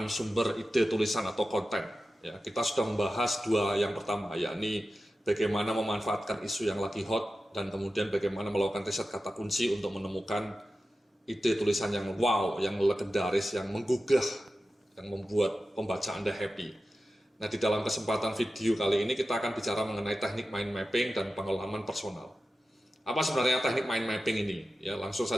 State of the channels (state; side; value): normal; both; correlation 0.93